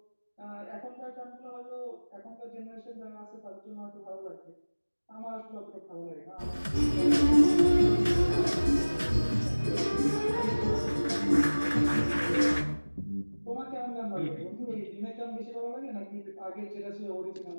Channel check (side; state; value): both; inverted; correlation -1.00